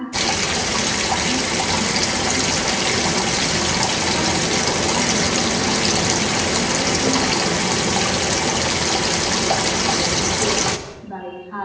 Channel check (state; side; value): identical; both; correlation 1.00